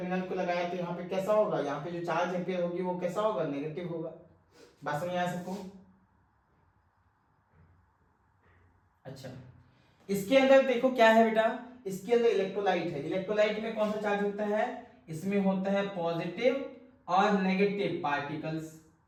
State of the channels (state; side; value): identical; both; correlation 1.00